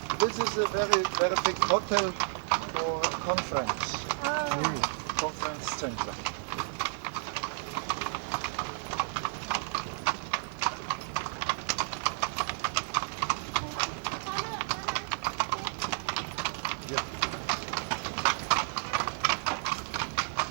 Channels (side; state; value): left; silent; digital silence